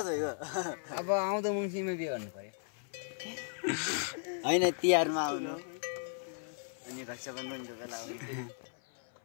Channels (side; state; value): right; silent; 54 dB below the other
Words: अब आउँदो मङ्सिरमा बिहे गर्नु पर्यो होइन तिहारमा आउनु अनि रक्षाबन्धनको बेला आउनु